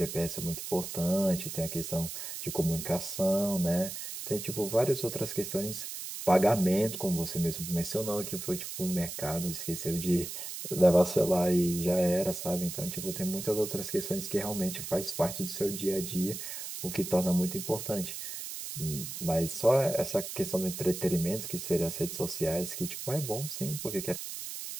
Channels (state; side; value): noise; right; hiss, 7 dB below the sound